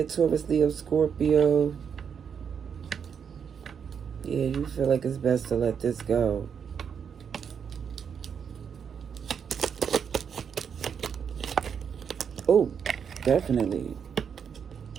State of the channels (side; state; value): left; quieter; 7.2 dB